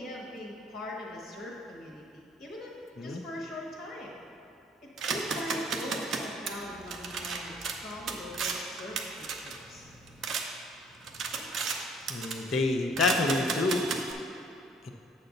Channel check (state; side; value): normal; both; correlation 0.58